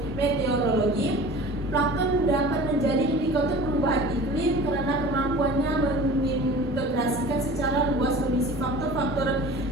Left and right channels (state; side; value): normal; both; correlation 0.40